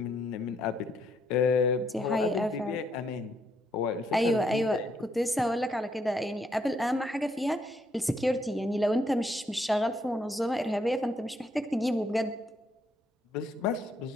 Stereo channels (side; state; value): both; normal; correlation 0.73